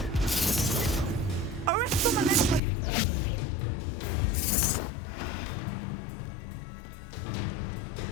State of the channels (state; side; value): drops out; right; at 2.6 s